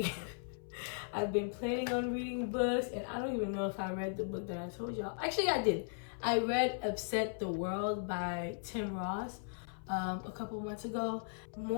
I've been planning on reading books, and I don't even know if I read the book that I told y'all. Actually, I did. I read Upset the World by Tim Ross a couple months ago.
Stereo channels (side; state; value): right; silent; 53 dB below the other